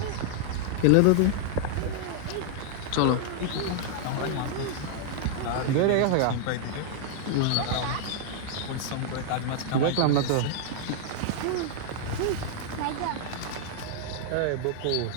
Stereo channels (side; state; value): both; different; correlation -0.01